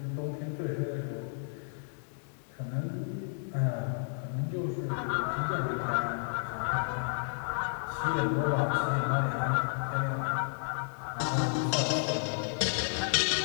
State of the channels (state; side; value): silent; right; digital silence